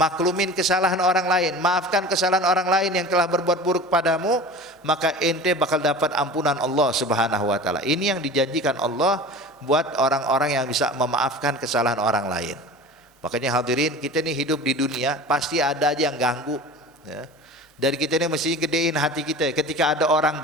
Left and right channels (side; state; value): both; normal; correlation 0.37